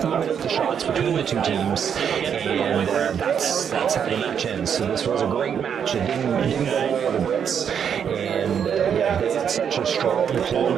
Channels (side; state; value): left; quieter; 7.8 dB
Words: out the shots between the two teams, and that's how the match ends. So this was a great match. It didn't go the way of the Brits, and they had such a strong